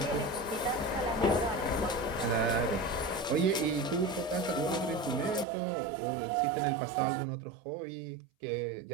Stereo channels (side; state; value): left; drops out; at 5.5 s